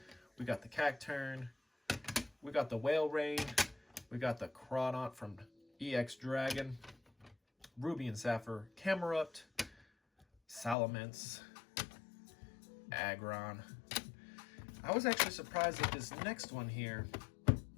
We got the Cacturn. We got the Whale Rain. We got the Crawdaunt from EX Dragon. Ruby and Sapphire Camerupt. Salamence. Aggron. I was actually surprised at this next one here,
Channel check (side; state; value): right; drops out; at 10.8 s